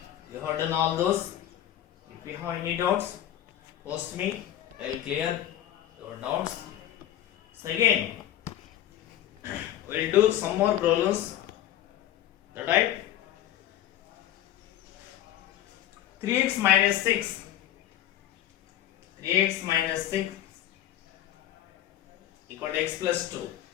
you have done all those. If you have any doubts, post me. I will clear your doubts. So again, we will do some more problems. That right? 3x minus 6. 3x minus 6 equal to x plus 2.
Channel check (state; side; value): quieter; right; 12.3 dB